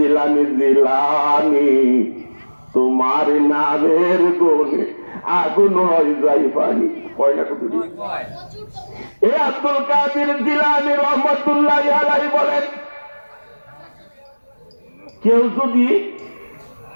জিলানি তোমার নামের গুণে আগুন হয়ে যায় পানি। কয় না কত? এই আব্দুল কাদের জিলানি রহমাতুল্লাহ আলাইহি বলেন, কেউ যদি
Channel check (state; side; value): inverted; both; correlation -1.00